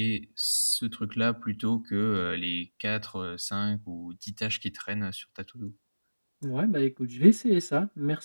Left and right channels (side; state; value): both; inverted; correlation -1.00